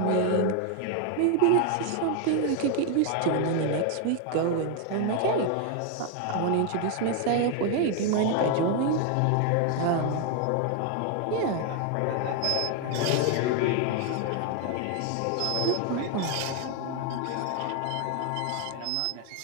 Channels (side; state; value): both; different; correlation 0.00